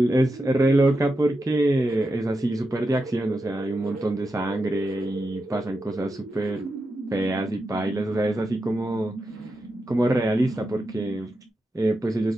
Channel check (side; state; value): both; normal; correlation 0.88